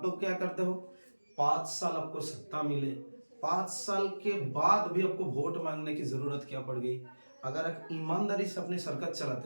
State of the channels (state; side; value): inverted; both; correlation -1.00